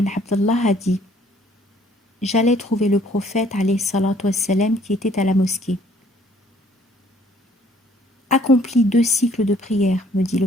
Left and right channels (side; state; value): both; normal; correlation 0.60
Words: Abdullah a dit: j'allais trouver le prophète alayhi salatu wassalam qui était à la mosquée. Accomplis 2 cycles de prière, me dit